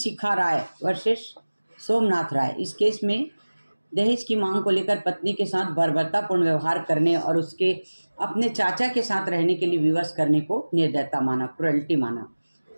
राय वर्सेस सोमनाथ राय। इस केस में दहेज की मांग को लेकर पत्नी के साथ बर्बरतापूर्ण व्यवहार करने और उसके अपने चाचा के साथ रहने के लिए विवश करने को निर्दयता माना, क्रुएल्टी माना।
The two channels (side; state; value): both; inverted; correlation -1.00